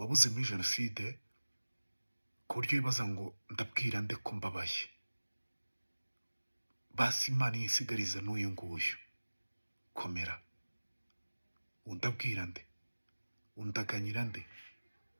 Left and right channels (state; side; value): inverted; both; correlation -1.00